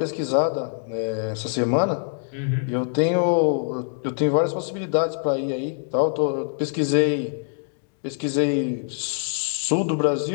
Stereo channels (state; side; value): silent; right; digital silence